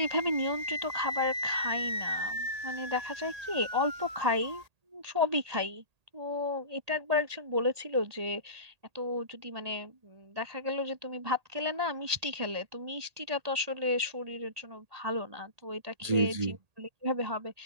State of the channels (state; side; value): late; left; 1.8 ms